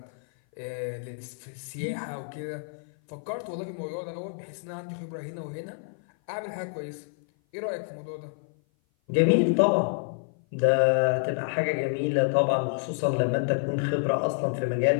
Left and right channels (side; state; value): right; silent; 56 dB below the other